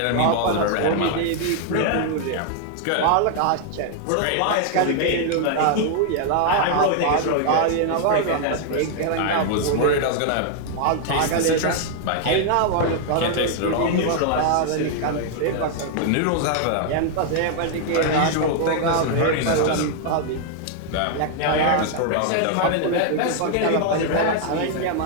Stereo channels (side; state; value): both; different; correlation 0.00